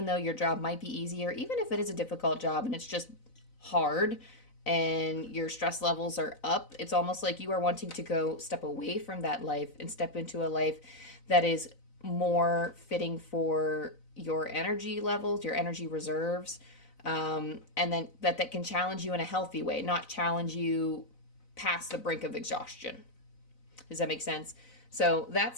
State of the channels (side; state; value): right; late; 4.0 ms